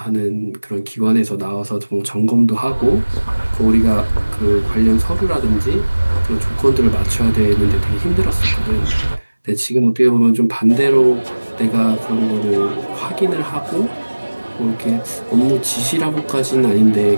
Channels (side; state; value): both; inverted; correlation -1.00